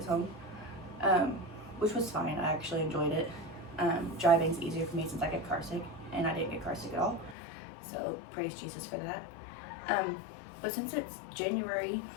home, which was fine. I actually enjoyed it. Driving's easier for me since I get car sick, and I didn't get car sick at all, so praise Jesus for that. But since it's January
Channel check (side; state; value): right; drops out; at 7.4 s